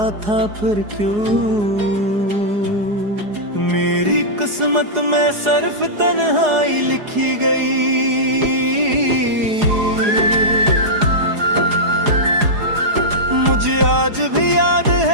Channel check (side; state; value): left; late; 4.8 ms